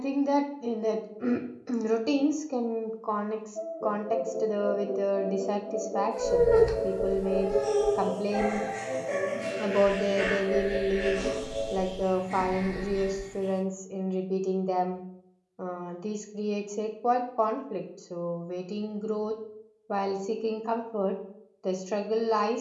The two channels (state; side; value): identical; both; correlation 1.00